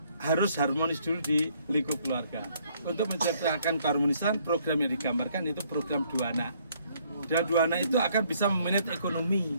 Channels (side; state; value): both; inverted; correlation -0.65